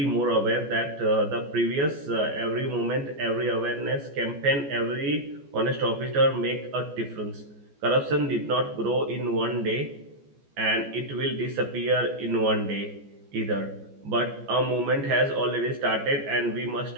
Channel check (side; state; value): left; late; 14 ms